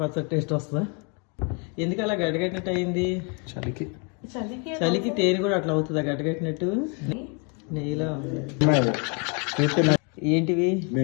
పచ్చడి టేస్ట్ వస్తుందా? ఎందుకు అలా గడ్డగట్టినట్టు అయింది? చలికి చలికి తేనె కూడా అట్లా అవుతుందా గడ్డగట్టినట్టు? నెయ్యిలా ఉంది. ఏంటివి?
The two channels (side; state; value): right; quieter; 35.5 dB